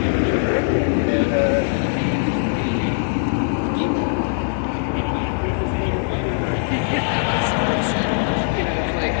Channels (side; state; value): right; silent; 65 dB below the other